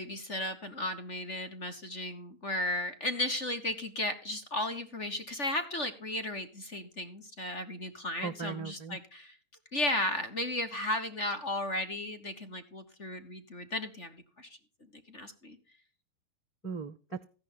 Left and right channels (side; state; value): right; late; 3.4 ms